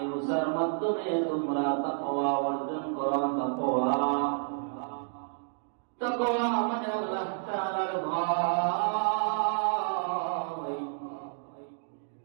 রোজার মাধ্যমে তোমরা তাকওয়া অর্জন করো। তাকওয়া মানে আল্লাহ তাআলার ভয়।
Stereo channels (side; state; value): left; silent; digital silence